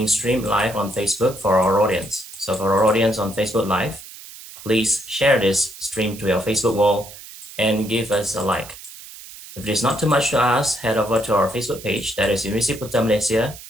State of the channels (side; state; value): right; noise; hiss, 16 dB below the sound